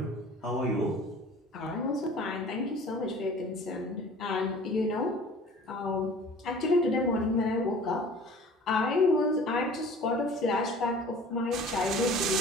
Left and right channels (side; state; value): both; normal; correlation 0.46